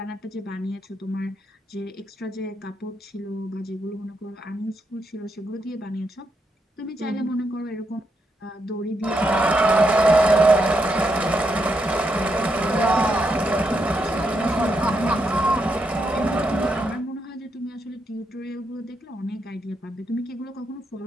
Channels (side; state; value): both; normal; correlation 0.81